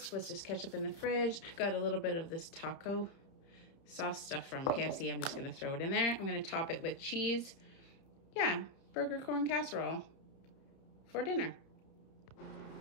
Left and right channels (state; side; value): late; right; 30 ms